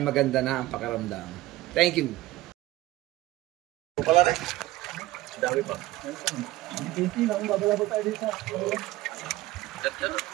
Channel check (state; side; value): quieter; left; 17.4 dB